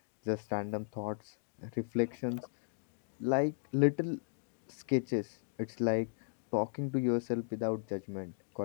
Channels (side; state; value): right; silent; digital silence